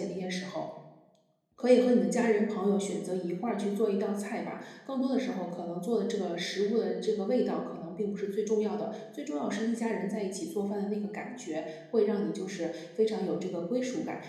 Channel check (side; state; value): both; identical; correlation 1.00